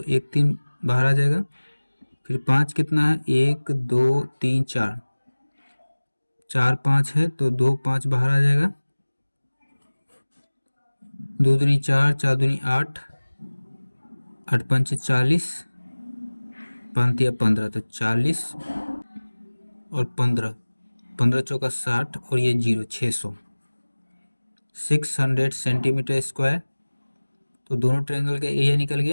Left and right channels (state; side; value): inverted; both; correlation -1.00